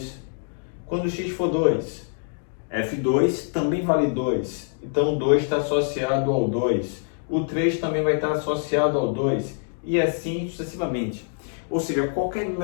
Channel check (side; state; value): right; silent; digital silence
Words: Quando x for 2, f2 também vale 2. Então, o 2 está associado ao 2. O 3 também vai estar associado ao 2. E assim sucessivamente. Ou seja, qualquer